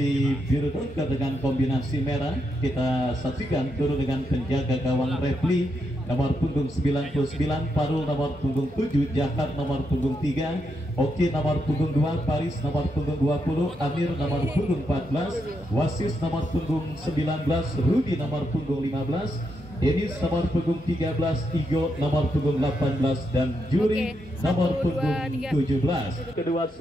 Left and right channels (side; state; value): both; normal; correlation 0.82